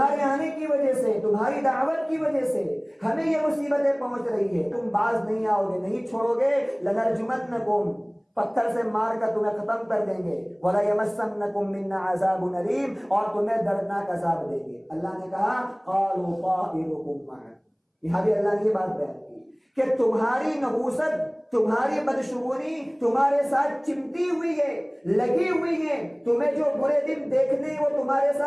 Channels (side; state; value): both; identical; correlation 1.00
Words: آنے کی وجہ سے، تمہاری دعوت کی وجہ سے ہمیں یہ مصیبتیں پہنچ رہی ہے، تم باز نہیں آؤ گے، نہیں چھوڑو گے، لنرجمنکم، پتھر سے مار کر تمہیں ختم کر دیں گے، وَلَيَمَسَّنَّكُم مِّنَّا عَذَابٌ أَلِيمٌ، اور تمہیں دردناک عذاب دیں گے۔ اللہ نے کہا قَالُوا طَائِرُكُم مَّعَكُمْ، یہاں بھی اللہ نے یہ بات بیان کی کہ تمہاری نحوست، تمہاری بدشگونی تمہارے ساتھ چمٹی ہوئی ہے، لگی ہوئی ہے، تمہیں جو برے دن دیکھنے ہیں وہ تمہارے